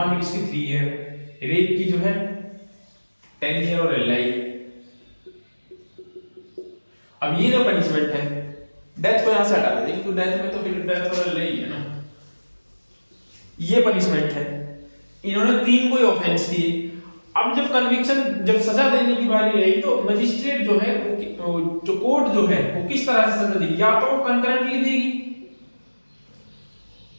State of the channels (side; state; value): both; inverted; correlation -1.00